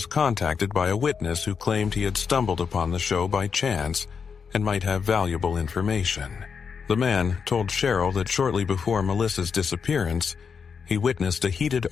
contacted by a witness who claimed he had stumbled upon the show by chance and might have valuable information. The man told Cheryl that shortly before Melissa's disappearance, he witnessed a heated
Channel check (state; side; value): quieter; right; 6.1 dB